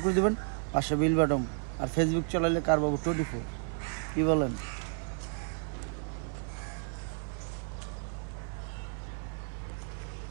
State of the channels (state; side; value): silent; left; 56 dB below the other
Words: করে দেবেন, পাশে বেল বাটন। আর ফেসবুক চালাইলে কারবাবু 24। কী বলেন?